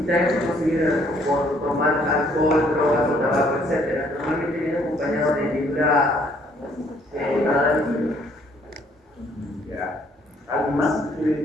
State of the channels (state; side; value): normal; both; correlation 0.64